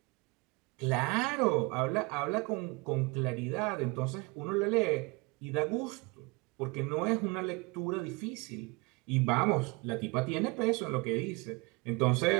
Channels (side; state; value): left; quieter; 27.3 dB